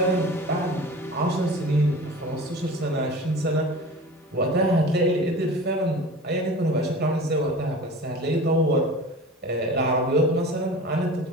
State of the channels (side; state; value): both; normal; correlation 0.37